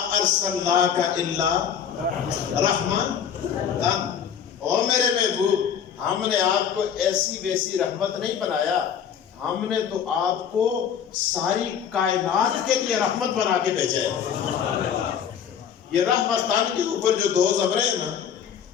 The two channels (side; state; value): right; quieter; 8.1 dB